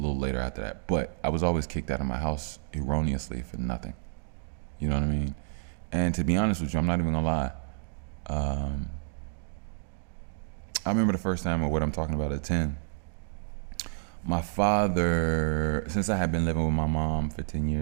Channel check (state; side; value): silent; left; digital silence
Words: later after that. But I was always kicked out of my house erroneously for nothing. You know what I mean? And to be honest with you, I'm not even gonna lie. I remember the first time of what I'm talking about at 10. My father, since I had been living with my mom for 10